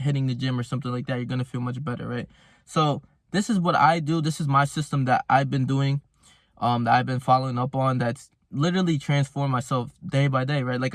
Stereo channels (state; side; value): identical; both; correlation 1.00